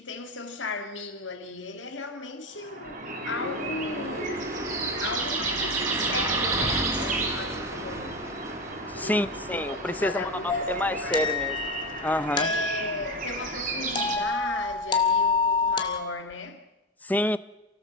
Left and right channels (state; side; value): normal; both; correlation 0.17